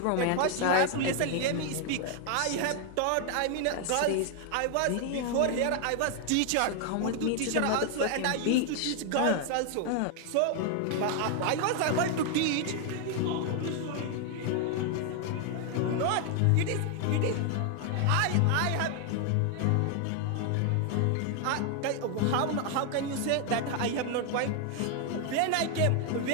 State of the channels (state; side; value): different; both; correlation 0.00